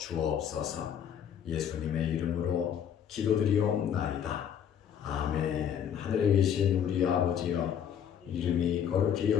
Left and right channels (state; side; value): quieter; right; 8.8 dB